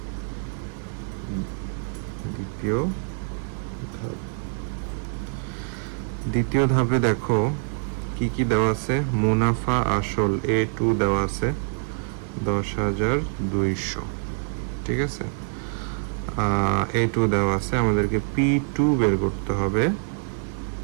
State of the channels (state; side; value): silent; left; digital silence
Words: দ্বিতীয় ধাপে দেখো কি কি দেওয়া আছে। মুনাফা আসল A2 দেওয়া আছে 10,200, ঠিক আছে। A2 দেওয়া আছে, আমাদেরকে P2 বের করতে হবে।